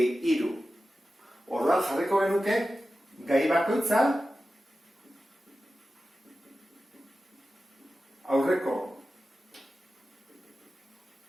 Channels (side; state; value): both; normal; correlation 0.94